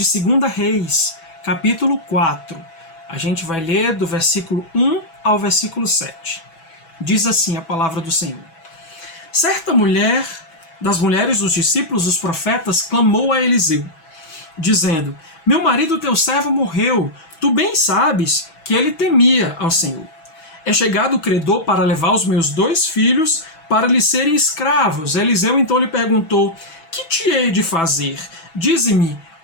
2 Reis, capítulo 4. A gente vai ler do versículo 1 ao versículo 7. Diz assim a palavra do Senhor. Certa mulher, das mulheres dos discípulos dos profetas, clamou a Eliseu, dizendo: Meu marido teu servo morreu, tu bem sabes que ele temia ao Senhor. É chegado o credor para levar os meus 2 filhos para lhe serem escravos. Eliseu então lhe perguntou: Que te hei de fazer? Dize-me,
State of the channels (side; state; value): right; late; 6.1 ms